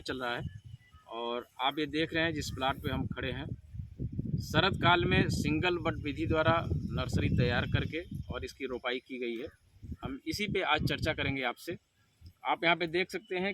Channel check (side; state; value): both; identical; correlation 1.00